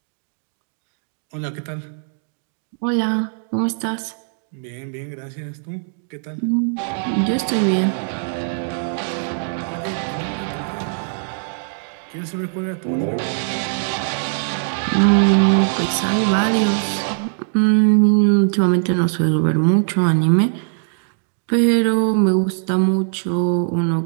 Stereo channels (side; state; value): left; silent; digital silence